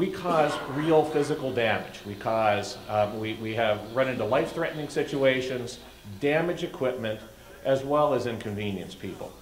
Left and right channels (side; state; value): both; identical; correlation 1.00